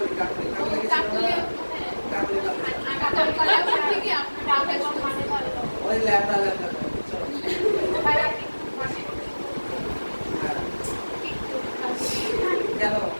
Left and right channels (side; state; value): both; inverted; correlation -1.00